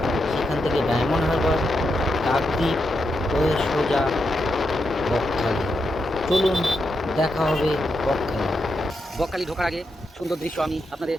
সেখান থেকে ডায়মন্ড হারবার, কাকদ্বীপ হয়ে সোজা বকখালি। চলুন দেখা হবে বকখালি ঢোকার আগে সুন্দর দৃশ্য আমি আপনাদের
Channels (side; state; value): both; normal; correlation 0.84